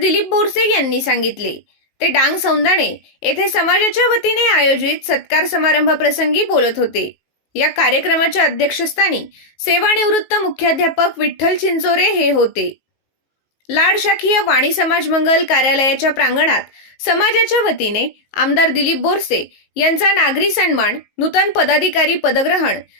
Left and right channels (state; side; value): late; right; 19 ms